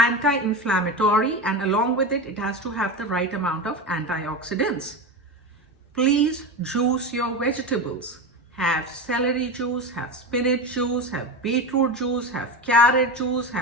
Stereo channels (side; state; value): both; normal; correlation 0.22